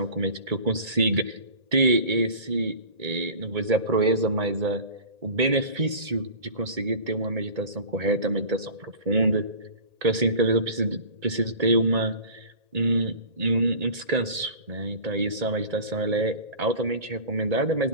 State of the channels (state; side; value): late; left; 1.8 ms